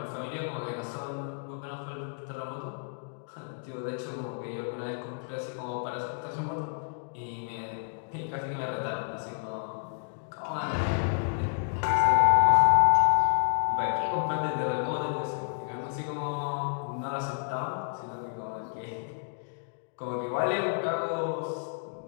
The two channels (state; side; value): silent; right; digital silence